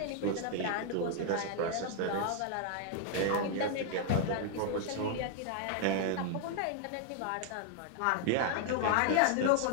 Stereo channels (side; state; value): both; different; correlation 0.00